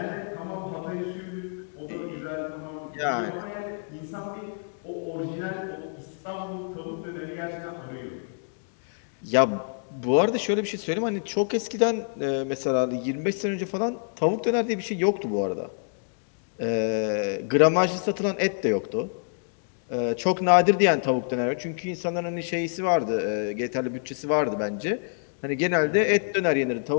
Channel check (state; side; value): silent; right; digital silence